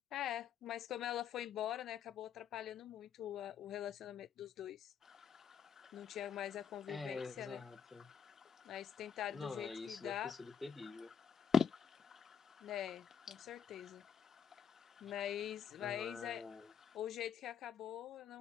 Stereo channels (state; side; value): quieter; right; 7.8 dB